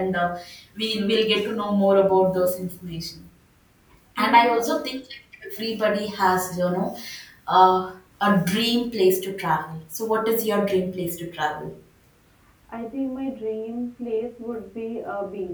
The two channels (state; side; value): identical; both; correlation 1.00